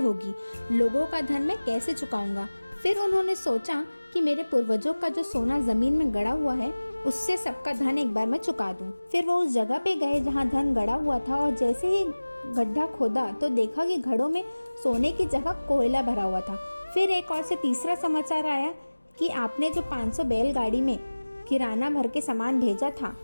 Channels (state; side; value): inverted; both; correlation -1.00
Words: लोगों का धन मैं कैसे चुकाऊंगा। फिर उन्होंने सोचा कि मेरे पूर्वजों का जो सोना जमीन में गड़ा हुआ है उससे सबका धन एक बार मैं चुका दूं। फिर वो उस जगह पे गए जहाँ धन गड़ा हुआ था और जैसे ही गड्ढा खोदा तो देखा कि घड़ों में सोने की जगह कोयला भरा हुआ था। फिर एक और से तीसरा समाचार आया कि आपने जो 500 बैलगाड़ी में किराना भर के सामान भेजा था